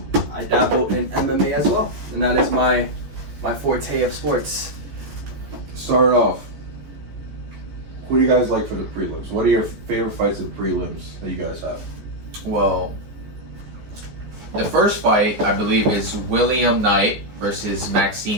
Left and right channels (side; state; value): left; late; 14 ms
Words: I dabble in MMA as well, and that is my forte of sports. Start off. Who do you guys like for the prelims? What are your favorite fights of the prelims that you guys have? Well, the first fight, I believe, is William Knight versus